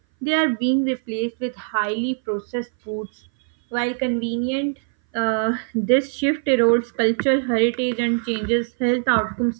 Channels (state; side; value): silent; left; 60 dB below the other